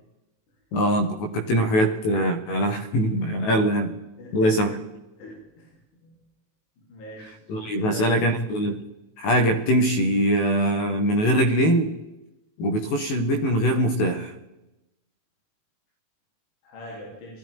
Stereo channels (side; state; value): right; late; 19 ms